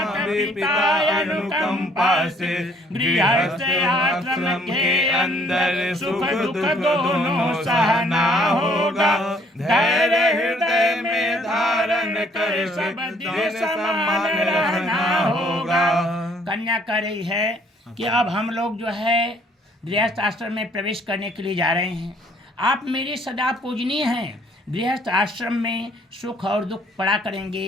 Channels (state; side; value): normal; both; correlation 0.62